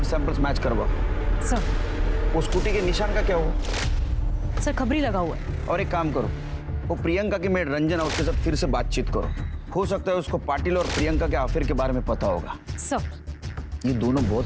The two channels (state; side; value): identical; both; correlation 1.00